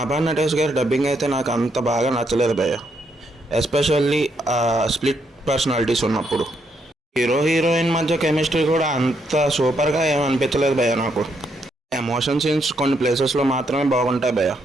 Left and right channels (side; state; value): both; normal; correlation 0.76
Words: నటేష్ గారి డబ్బింగ్ అయితే నాకు అంత బాగా నచ్చలేదు భయ్య, ఎస్పెషల్లీ స్ప్లిట్ పర్సనాలిటీస్ ఉన్నప్పుడు. హీరో హీరోయిన్ మధ్య కెమిస్ట్రీ కూడా అంత సూపర్గా ఏమి అనిపించలేదు భయ్య నాకు. ఎమోషన్ సీన్స్ కొన్ని ప్లేసెస్లో మాత్రమే బాగుంటాయి భయ్య,